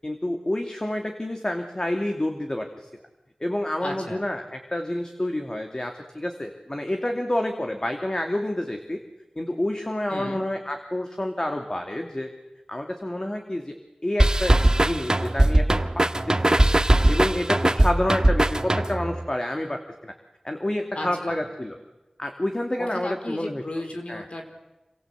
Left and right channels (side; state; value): both; normal; correlation 0.97